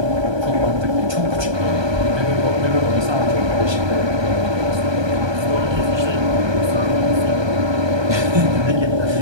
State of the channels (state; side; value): late; left; 1.2 ms